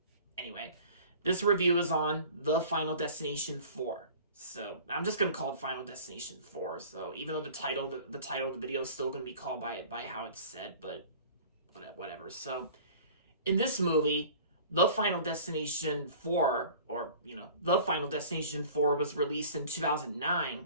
anyway, this review is on The Final Destination 4. So I'm just gonna call it Final Destination 4. So even though the title of the video is still gonna be called by how it's said, but whatever. So in this movie, The Final Destination 4, or The Final Destination 4 was released in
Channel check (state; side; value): inverted; both; correlation -0.45